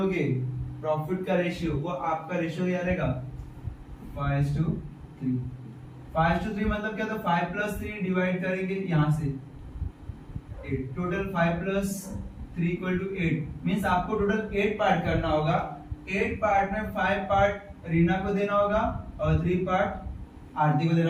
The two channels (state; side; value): identical; both; correlation 1.00